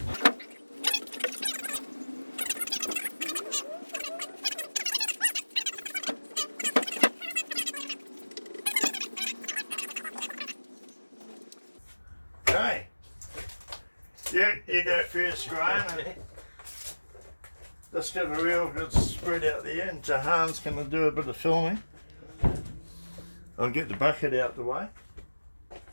Okay, you go first, Graham. And just give a real good spread out there, and Jahan's going to do a bit of filming. I'll get the bucket out the way.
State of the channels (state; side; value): inverted; both; correlation -1.00